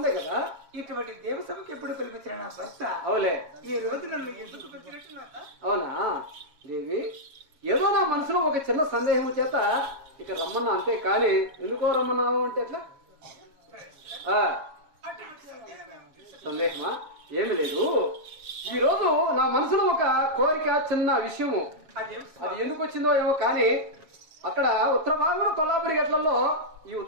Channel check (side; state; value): left; late; 7.2 ms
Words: కదా. ఇటువంటి దేవసభకు ఎప్పుడు పిలిపించిన నా భర్త అవులే. ఈ రోజు నన్ను ఎందుకు పిలిపించినట్టు? అవునా దేవి, ఏదో నా మనసులో ఒక చిన్న సందేహం చేత ఇక రమ్మన్నా, అంతే కానీ ఎందుకో రమ్మన్నావు అంటే ఎట్లా? సందేహమా? ఏమి లేదు. ఈ రోజు నా మనసులో ఒక కోరిక, చిన్న విషయము. అది ఎందుకు వచ్చిందో ఏమో కానీ అక్కడ ఉత్తర భాగంలో కొల్లాపురి గట్లలో, ఈ